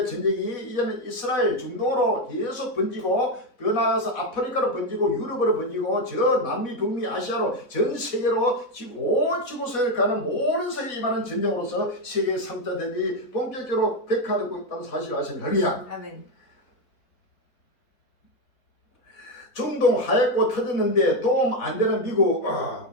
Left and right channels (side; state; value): right; late; 4.0 ms